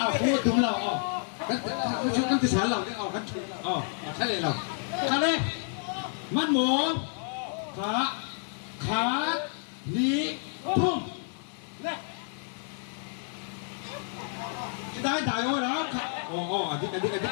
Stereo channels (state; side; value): silent; right; 58 dB below the other